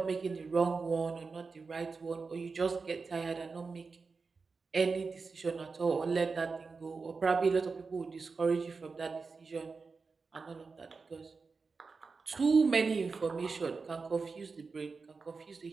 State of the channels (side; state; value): left; quieter; 4.6 dB